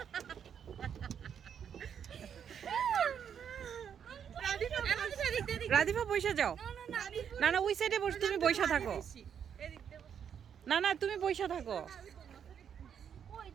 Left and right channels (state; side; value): quieter; left; 8.1 dB